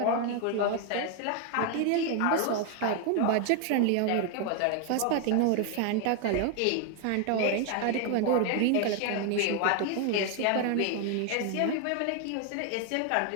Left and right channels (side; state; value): both; different; correlation 0.01